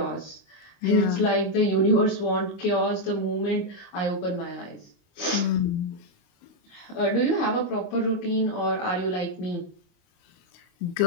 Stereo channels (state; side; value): late; right; 29 ms